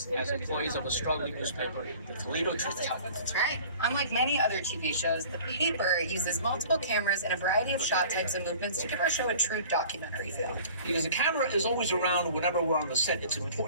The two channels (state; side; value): inverted; both; correlation -0.46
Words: as employees of a struggling newspaper, the Toledo Truth-Teller. That's right. Unlike many other TV shows, the paper uses multiple cameras and a variety of shot types and movements to give our show a true documentary feel. Because the camera is always around whenever we're on the set, it's